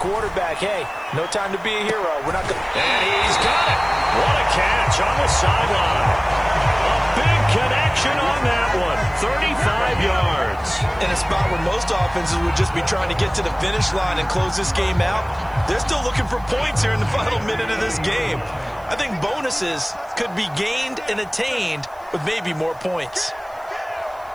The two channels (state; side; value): noise; right; hiss, 29 dB below the sound